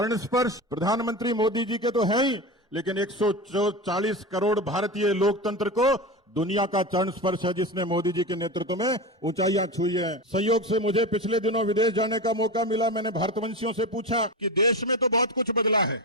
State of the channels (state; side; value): normal; both; correlation 0.23